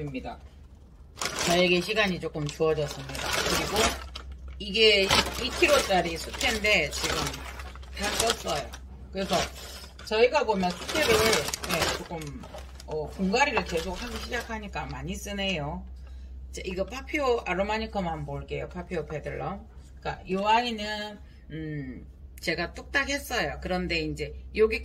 저에게 시간이 조금 주어졌습니다. 그리고 이게 2kg짜리 수태인데 지금 다 썼어요. 그래서 저희가 보면 수태를 조금 분갈이를 계속 하기 시작하니까 많이 쓰네요. 이거 파피오 아로마니커만 볼게요. 파피오 페들럼. 그러니까 이 아이는 제가 뚝딱 했어요. 그런데 이제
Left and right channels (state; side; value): identical; both; correlation 1.00